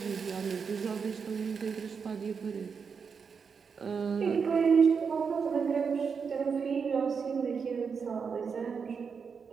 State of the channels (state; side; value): quieter; left; 5.9 dB